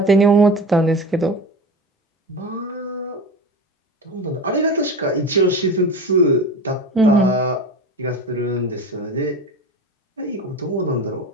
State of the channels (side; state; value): both; normal; correlation 0.30